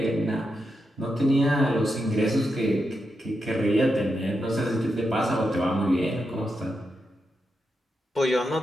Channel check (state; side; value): normal; both; correlation 0.86